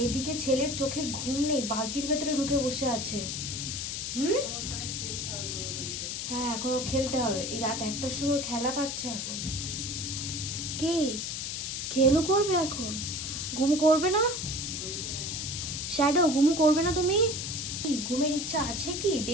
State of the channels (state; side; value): noise; left; hiss, 4 dB below the sound